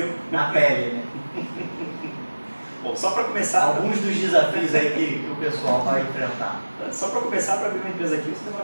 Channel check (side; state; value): both; inverted; correlation -1.00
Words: Na pele, né? Bom, só para começar... Alguns dos desafios aí que o pessoal vai enfrentar. Só para começar, para abrir uma empresa aqui, você